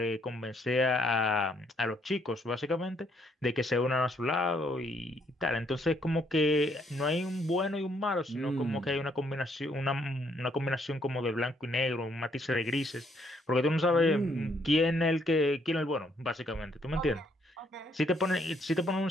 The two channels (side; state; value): both; normal; correlation 0.70